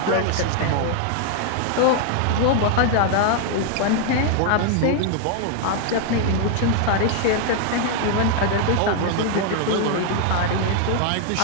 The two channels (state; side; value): different; both; correlation 0.00